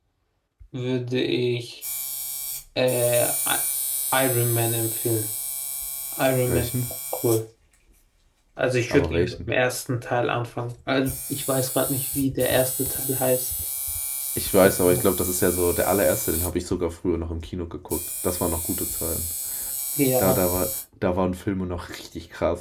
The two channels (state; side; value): identical; both; correlation 1.00